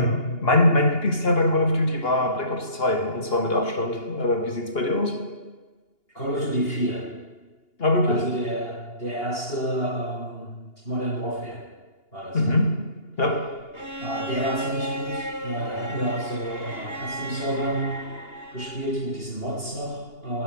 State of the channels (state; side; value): late; right; 2.8 ms